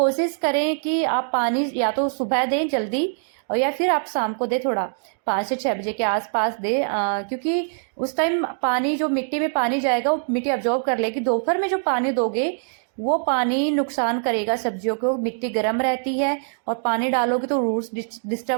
करें कि आप पानी या तो सुबह दें जल्दी, और या फिर आप शाम को दें, थोड़ा 5 से 6 बजे के आसपास दें। क्योंकि उस टाइम पानी, जो मिट्टी में पानी जाएगा वो मिट्टी अब्जॉर्ब कर लेगी। दोपहर में जो पानी दोगे वो पानी नुकसान करेगा सब्जियों को, मिट्टी गर्म रहती है और पानी डालोगे तो रूट्स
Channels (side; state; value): left; silent; digital silence